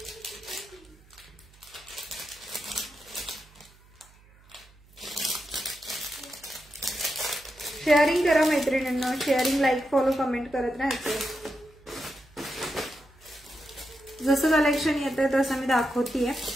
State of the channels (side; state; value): right; noise; hum, 27 dB below the sound